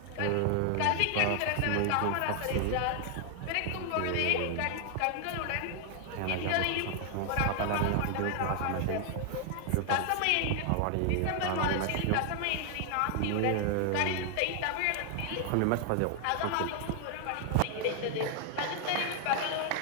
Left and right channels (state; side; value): different; both; correlation 0.00